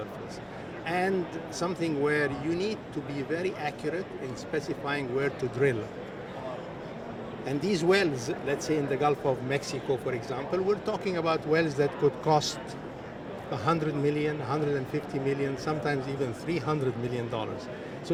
and something where you need to be very accurate in specifying where to drill. And these wells, let's say in the Gulf of Mexico, for example, we're talking about wells that could cost $100 million, $150 million, sometimes even $300 million. So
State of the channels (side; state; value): both; identical; correlation 1.00